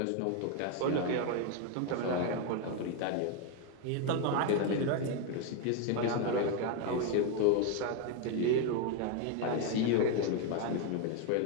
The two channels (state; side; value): different; both; correlation 0.01